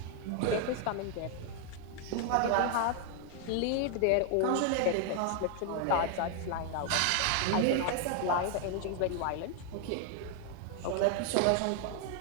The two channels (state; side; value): different; both; correlation 0.00